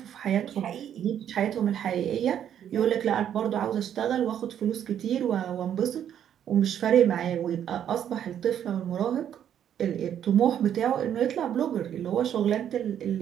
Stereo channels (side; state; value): left; quieter; 9.7 dB